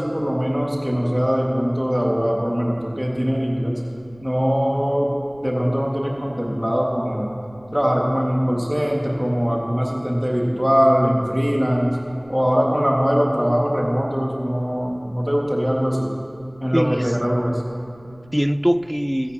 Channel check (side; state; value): right; noise; rumble, 26 dB below the sound